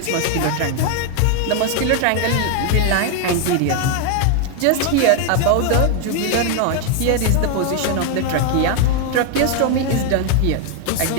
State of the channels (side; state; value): both; different; correlation 0.00